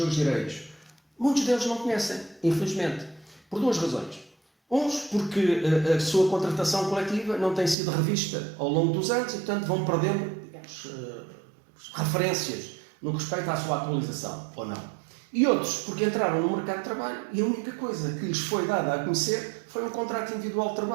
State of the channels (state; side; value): drops out; left; at 7.8 s